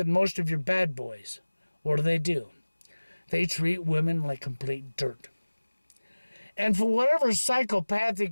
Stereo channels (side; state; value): both; inverted; correlation -1.00